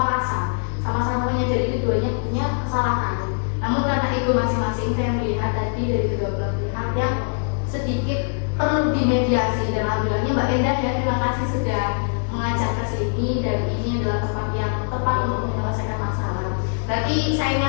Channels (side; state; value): right; silent; digital silence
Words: sama-sama menyadari keduanya punya kesalahan. Namun karena ego masing-masing, saya melihat tadi dari kedua belah pihak yang sedikit perlu dimediasi. Dan alhamdulillahnya Mbak Endah ya, terima kasih sudah mengajak ke sini, dan ini adalah tempat yang tepat untuk menyelesaikan masalah. Berarti saya